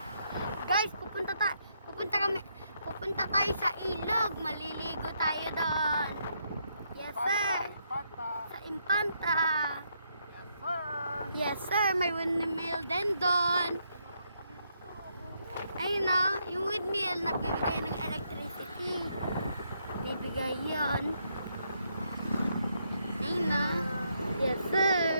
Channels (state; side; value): inverted; both; correlation -0.76